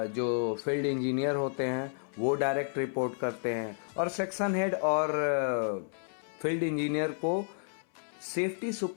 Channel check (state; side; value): silent; right; 57 dB below the other